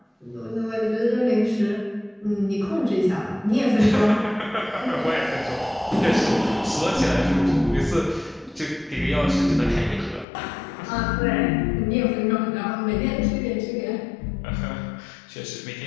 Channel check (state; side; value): drops out; right; at 10.2 s